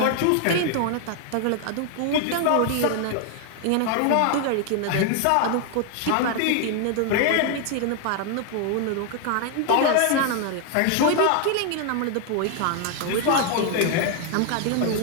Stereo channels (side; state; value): both; different; correlation 0.00